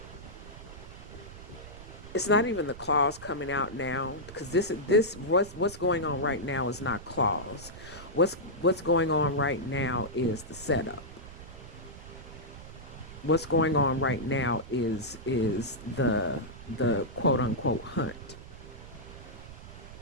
it's not even the claws coming out now, because this what's going on right now is not claws. What's going on right now is the setup. What's going on right now is the quote unquote hunt.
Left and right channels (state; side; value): noise; right; rumble, 15 dB below the sound